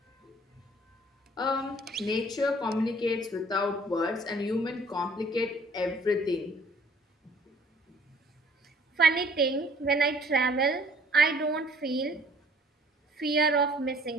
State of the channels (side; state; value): both; normal; correlation 0.56